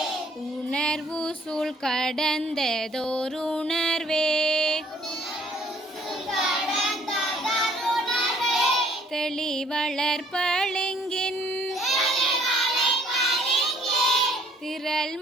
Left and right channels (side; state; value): both; normal; correlation 0.60